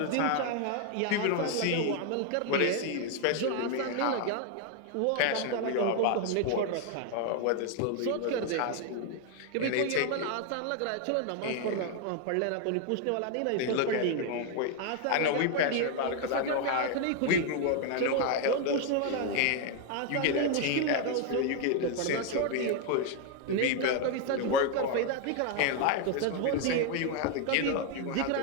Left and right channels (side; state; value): both; different; correlation 0.01